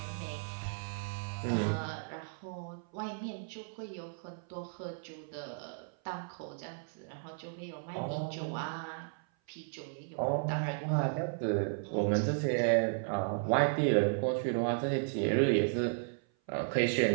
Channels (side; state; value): left; silent; 55 dB below the other